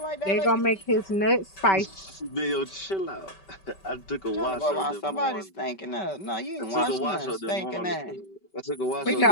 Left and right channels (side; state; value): right; late; 5.2 ms